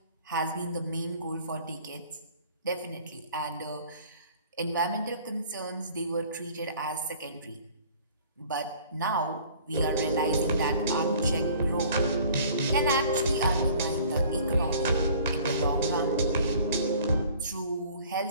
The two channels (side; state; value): both; inverted; correlation -0.50